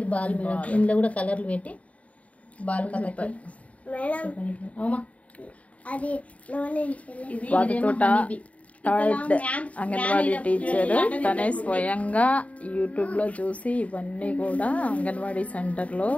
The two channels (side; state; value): right; late; 0.067 ms